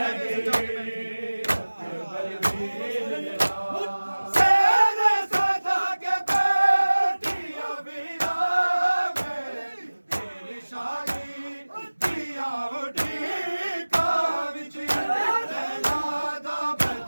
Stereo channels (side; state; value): both; inverted; correlation -1.00